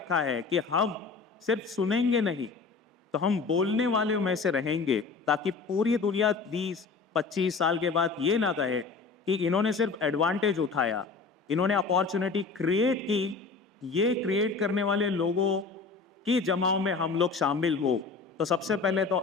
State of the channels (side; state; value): right; quieter; 4.6 dB